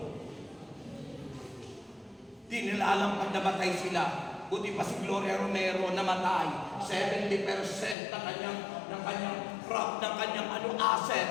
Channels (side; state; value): right; drops out; at 8.0 s